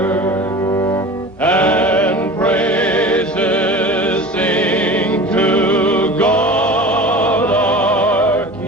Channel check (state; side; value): normal; both; correlation 0.37